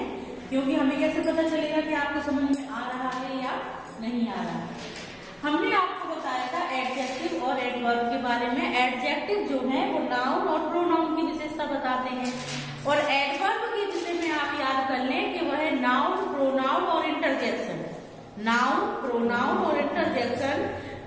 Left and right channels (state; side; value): identical; both; correlation 1.00